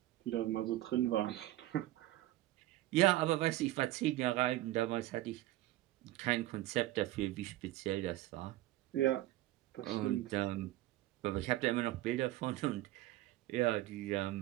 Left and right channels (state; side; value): quieter; left; 15.9 dB